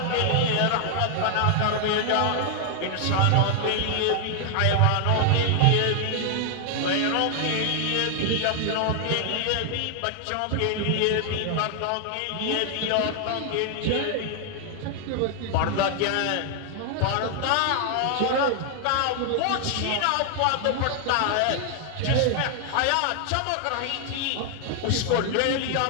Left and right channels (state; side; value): different; both; correlation 0.00